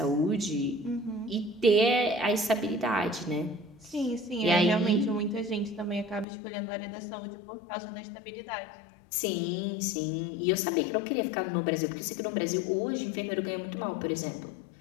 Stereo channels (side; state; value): right; drops out; at 6.2 s